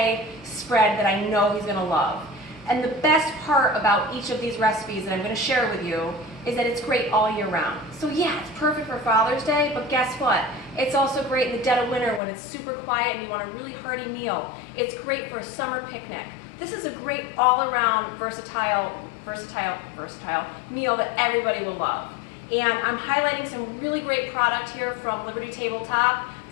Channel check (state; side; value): drops out; right; at 12.2 s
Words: spread that I know he's going to love. And the best part about each of these recipes that I'm going to share with you is that it's great all year round. So yeah, it's perfect for Father's Day, but guess what? It's also great in the dead of winter when it's super quiet and you want a really hearty meal. It's great for a summer picnic. This is a great all-around versatile meal that everybody will love. And I'm highlighting some really great product here from Liberty Tabletop